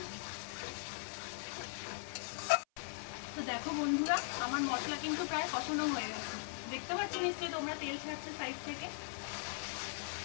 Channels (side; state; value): right; silent; 51 dB below the other